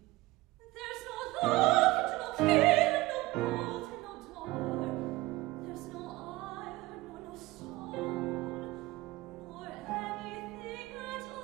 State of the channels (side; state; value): left; quieter; 19.8 dB